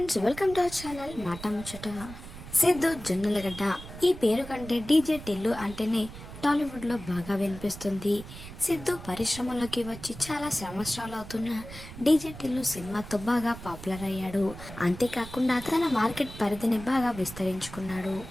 welcome to our channel మాట ముచ్చట. సిద్ధు జొన్నలగడ్డ ఈ పేరు కంటే డీజే టిల్లు అంటేనే టాలీవుడ్లో బాగా వినిపిస్తుంది. సిద్ధు పరిశ్రమలోకి వచ్చి చాలా సంవత్సరాలు అవుతున్న డీజే టిల్లు సినిమాతో బాగా పాపులర్ అయ్యాడు. అంతేకాకుండా తన మార్కెట్ పరిధిని బాగా విస్తరించుకున్నాడు.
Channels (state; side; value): noise; right; rumble, 13 dB below the sound